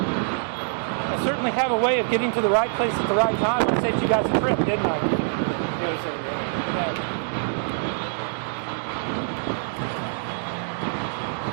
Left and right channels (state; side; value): silent; left; digital silence